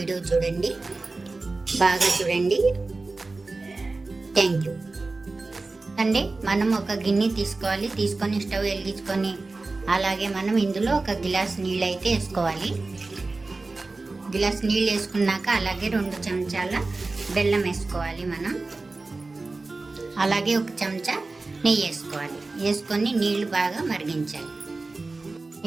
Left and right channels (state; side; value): quieter; left; 3.5 dB